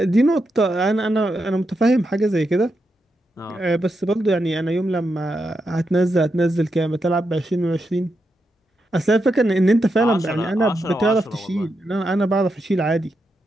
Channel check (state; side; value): normal; both; correlation 0.85